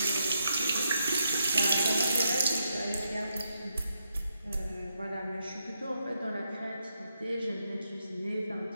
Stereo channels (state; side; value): inverted; both; correlation -0.81